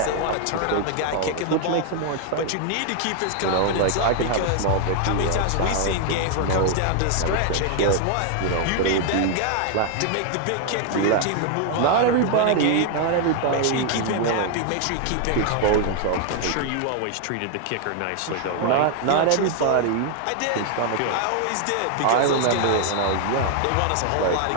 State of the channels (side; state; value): both; different; correlation 0.00